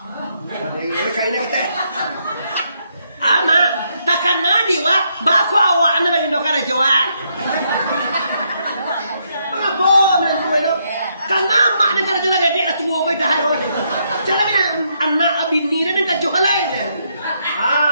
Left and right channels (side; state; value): both; inverted; correlation -0.76